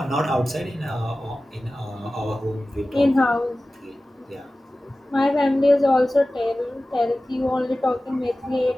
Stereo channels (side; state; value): both; normal; correlation 0.96